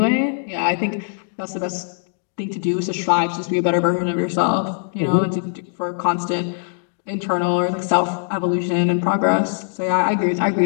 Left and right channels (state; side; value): silent; right; digital silence